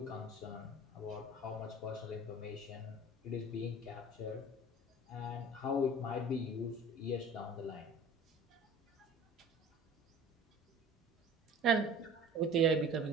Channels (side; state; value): both; normal; correlation 0.43